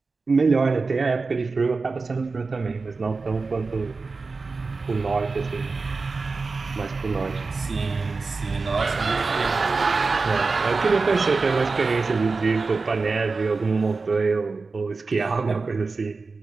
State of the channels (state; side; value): quieter; left; 4.1 dB